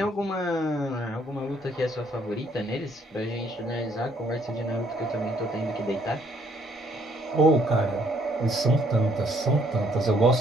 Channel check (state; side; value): normal; both; correlation 0.66